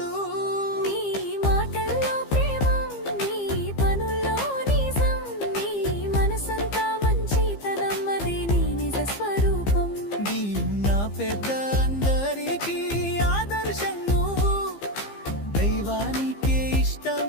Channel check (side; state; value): right; late; 15 ms